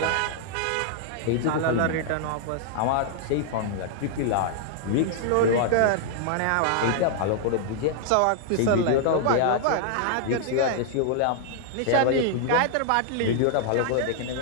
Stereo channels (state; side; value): different; both; correlation 0.00